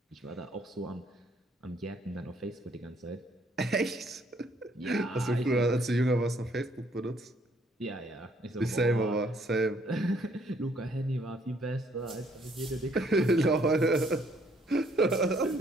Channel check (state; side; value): normal; both; correlation 0.66